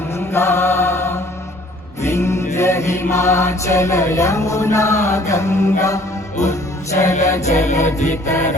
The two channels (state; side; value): normal; both; correlation 0.55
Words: विंध्य हिमाचल यमुना गंगा उज्जल जलधि